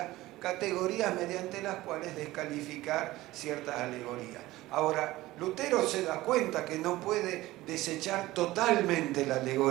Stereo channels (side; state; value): left; quieter; 17.6 dB